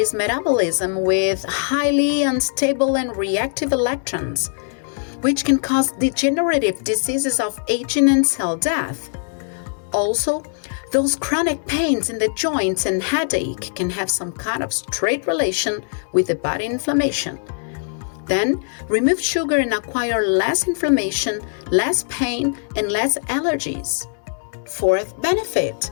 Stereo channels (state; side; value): silent; right; 65 dB below the other